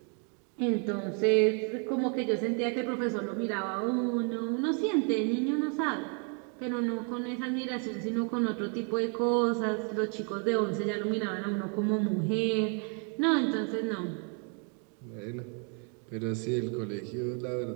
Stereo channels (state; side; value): quieter; left; 39.7 dB